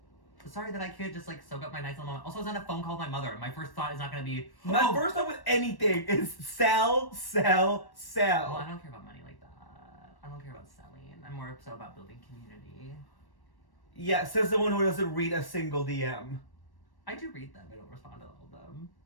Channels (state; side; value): late; right; 1.1 ms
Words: sorry that I can't just like soak up my nice little moment. Also, I was on a phone call with my mother. My first thought is not going to be My first thought with anything is sell. Well, I don't care about money like that. I don't care about selling. I'm more so about building community. Yeah, says the one who doesn't read a single DM. I do read them. I don't respond to all of them.